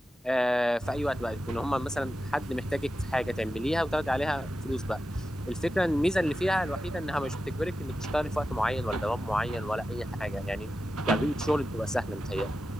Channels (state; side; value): normal; both; correlation 0.91